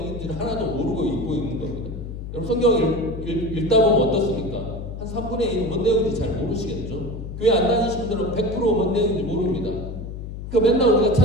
하나도 모르고 읽고 있는 겁니다. 여러분 성경을 읽다 보면 어떻습니까? 한 3분의 1은 뭔 내용인지 잘 모르시겠죠? 교회 안 다니신 분들은 100% 뭔 내용인지 모릅니다. 그러니까 맨날 우리가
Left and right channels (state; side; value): noise; left; hum, 9 dB below the sound